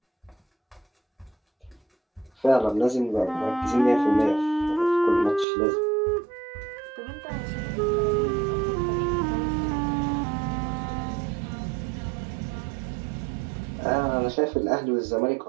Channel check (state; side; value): drops out; left; at 5.5 s